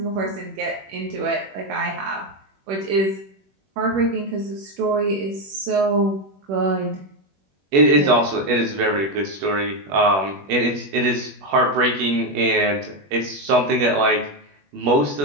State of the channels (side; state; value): left; late; 21 ms